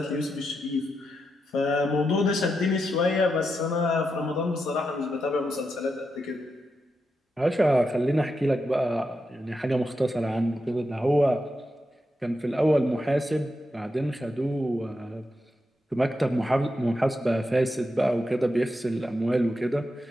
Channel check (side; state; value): both; normal; correlation 0.86